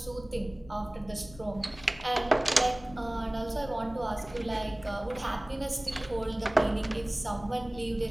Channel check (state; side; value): noise; left; rumble, 19 dB below the sound